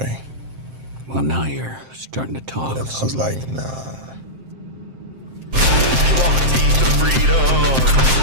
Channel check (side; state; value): left; late; 7.6 ms